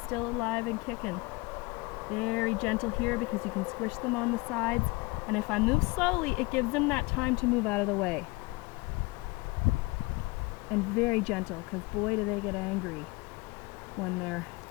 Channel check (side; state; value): right; quieter; 24.8 dB